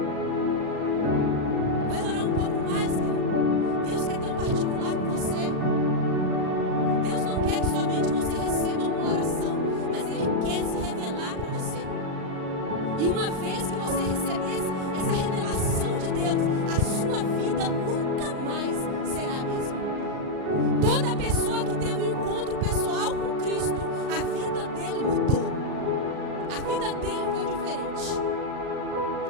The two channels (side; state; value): left; late; 38 ms